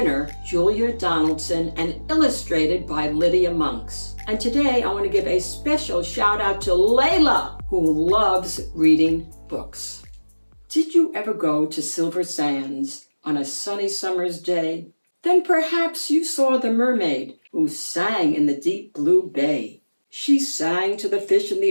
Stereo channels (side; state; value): both; inverted; correlation -1.00